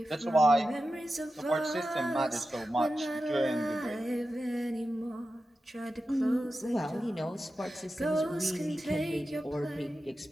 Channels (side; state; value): both; normal; correlation 0.92